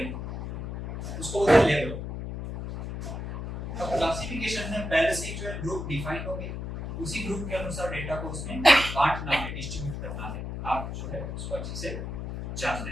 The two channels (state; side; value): noise; left; hum, 6 dB below the sound